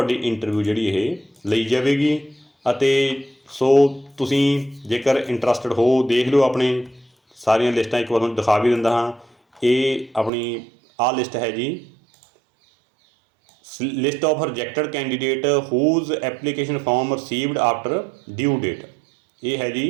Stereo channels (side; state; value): left; drops out; at 10.3 s